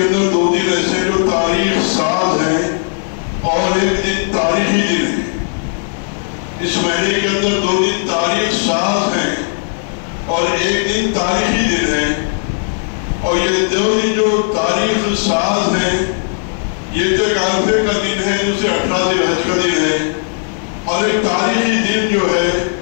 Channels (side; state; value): right; silent; digital silence